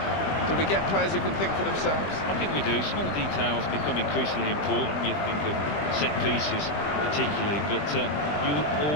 Do we get players who can think for themselves? I think we do. Small details become increasingly important. You think of set pieces particularly, but you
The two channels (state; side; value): late; right; 20 ms